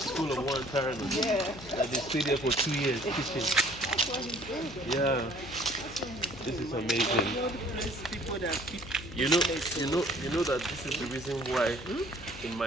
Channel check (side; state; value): left; noise; hum, 14 dB below the sound